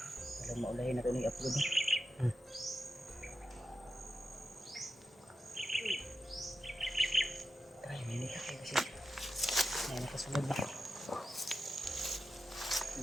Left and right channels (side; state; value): both; normal; correlation 0.89